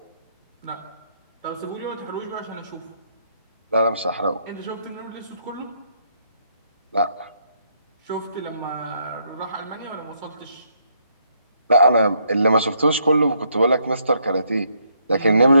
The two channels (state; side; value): inverted; both; correlation -0.73